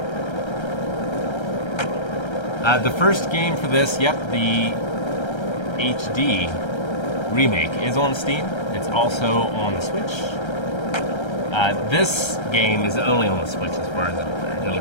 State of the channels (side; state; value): right; late; 1.3 ms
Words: 10. The first game for this, yep, the HD remake is on Steam. It's also on the Switch. This game is only on the Switch as far as I'm aware.